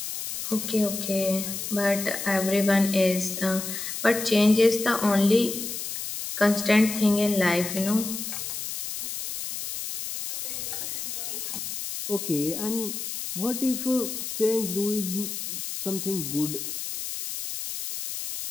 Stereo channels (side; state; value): left; noise; hiss, 6 dB below the sound